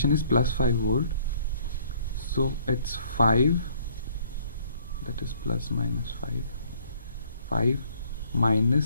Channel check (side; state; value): both; inverted; correlation -0.60